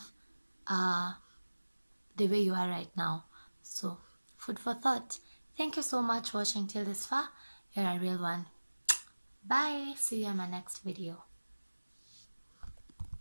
the way you are right now? So food for thought. Thank you so much for watching till this far. You're a real one. Bye. See you in my next video.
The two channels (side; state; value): both; inverted; correlation -1.00